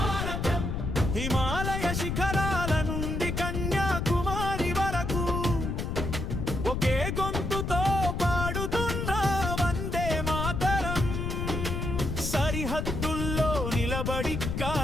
హిమాలయ శిఖరాల నుండి కన్యాకుమారి వరకు ఒకే గొంతుతో పాడుతున్న వందే మాతరం సరిహద్దుల్లో నిలబడి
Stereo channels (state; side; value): noise; left; rumble, 2 dB below the sound